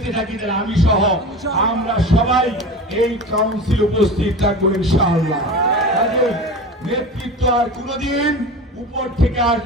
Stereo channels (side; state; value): both; normal; correlation 0.32